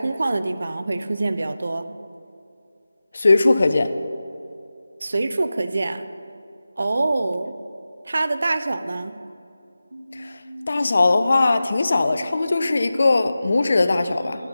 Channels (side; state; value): both; inverted; correlation -0.95